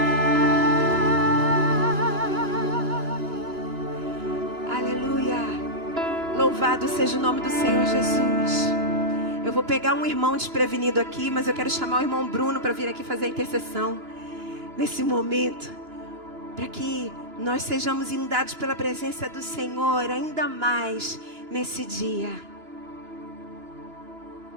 aleluia. Louvado seja o nome do Senhor Jesus. Eu vou pegar um irmão desprevenido aqui, mas eu quero chamar o irmão Bruno para vir aqui fazer a intercessão nesse momento, para que nós sejamos inundados pela presença do Senhor ainda mais nesse dia.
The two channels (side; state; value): left; late; 2.9 ms